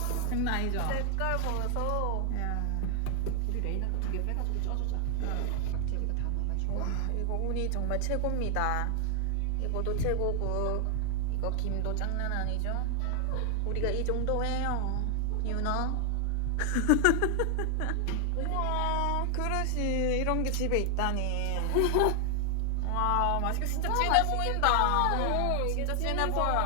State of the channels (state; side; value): different; both; correlation 0.00